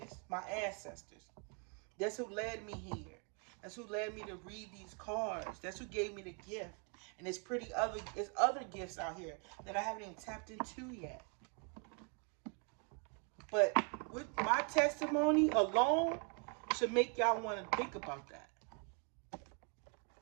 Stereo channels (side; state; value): left; quieter; 38.0 dB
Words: My ancestors. That's who led me here. That's who led me to read these cards. That's who gave me the gift. And there's other gifts out here that I haven't even tapped into yet. But with my testimony alone should make y'all want to think about that.